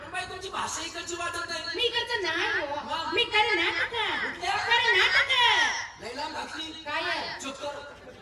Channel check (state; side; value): identical; both; correlation 1.00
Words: पण बाई तुमची भाषा इकडची वाटत नाही. मी इकडचं नाही हो. मी कर्नाटक. लई लांब घातली. काय चुप कर.